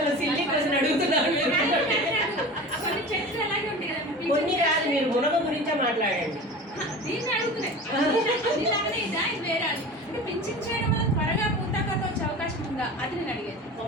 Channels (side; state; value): both; normal; correlation 0.35